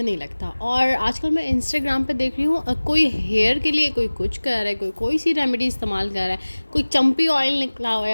नहीं लगता। और आजकल मैं इंस्टाग्राम पे देख रही हूँ, कोई हेयर के लिए कोई कुछ कर रहा है, कोई कोई सी रेमेडी इस्तेमाल कर रहा है, कोई चंपी ऑयल निकला हुआ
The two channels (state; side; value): inverted; both; correlation -1.00